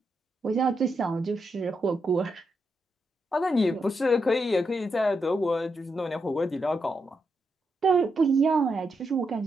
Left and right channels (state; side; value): normal; both; correlation 0.83